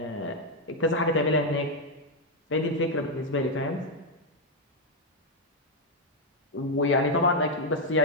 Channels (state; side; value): normal; both; correlation 0.01